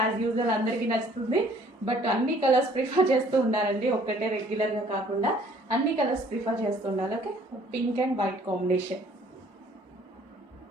usual అందరికీ నచ్చుతుంది, బట్ అన్ని కలర్స్ ప్రిఫర్ చేస్తూ ఉండాలండి, ఒక్కటే రెగ్యులర్గా కాకుండా అన్ని కలర్స్ ప్రిఫర్ చేస్తూ ఉండాలి. Okay, pink and white combination.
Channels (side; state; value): both; normal; correlation 0.58